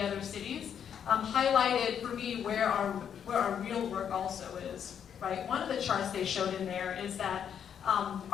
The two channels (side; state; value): right; quieter; 8.4 dB